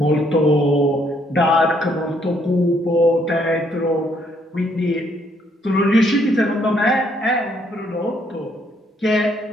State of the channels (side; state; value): both; normal; correlation 0.69